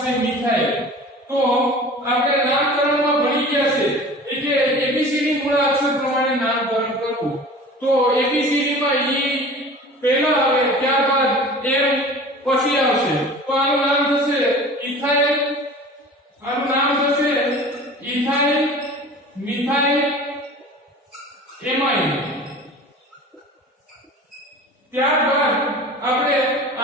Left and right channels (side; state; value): both; normal; correlation 0.40